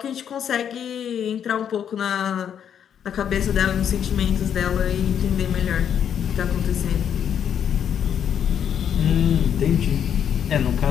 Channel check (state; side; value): quieter; right; 8.7 dB